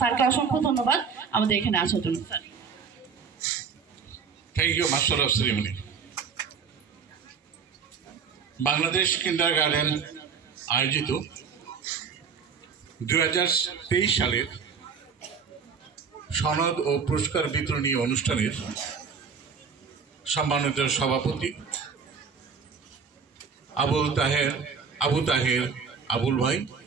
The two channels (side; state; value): left; quieter; 6.0 dB